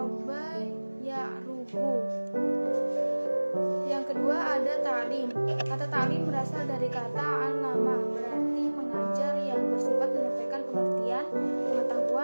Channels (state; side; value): inverted; both; correlation -1.00